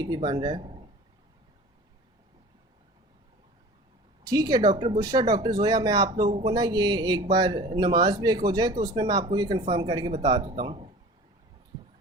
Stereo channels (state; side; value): normal; both; correlation 0.41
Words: बन रहा है। ठीक है डॉक्टर बुशरा, डॉक्टर जोया, मैं आप लोगों को ना ये एक बार नमाज ब्रेक हो जाए तो उसमें मैं आपको ये कंफर्म करके बता देता हूँ।